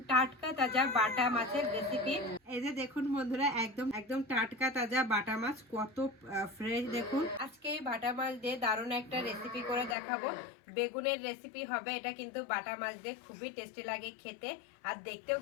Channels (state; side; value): drops out; right; at 10.0 s